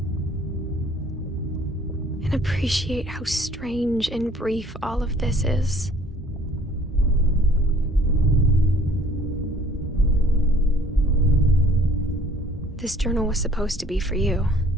and appreciate how strange and brief all of this is. This journal was supposed to be for you.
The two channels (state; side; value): normal; both; correlation 0.56